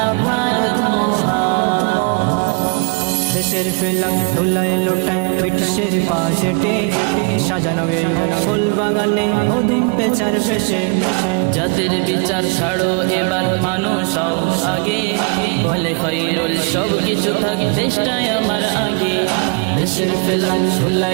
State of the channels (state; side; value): quieter; left; 34.2 dB